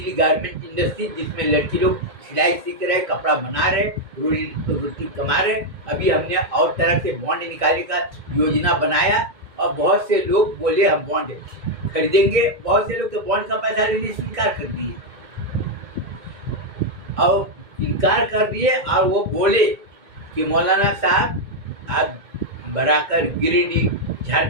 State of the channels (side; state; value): left; late; 2.1 ms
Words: गारमेंट इंडस्ट्री, जिसमें लड़की लोग सिलाई सीख रहे, कपड़ा बना रहे, रोटी कमा रहे। अभी हमने और तरह से बॉन्ड निकालने का योजना बनाया और बहुत से लोग बोले हम बॉन्ड खरीदेंगे। बहुत से लोग तो बॉन्ड का पैसा लेने से इनकार कर दिए और वो बोले कि मौलाना साहब आप बराकर गिरिडीह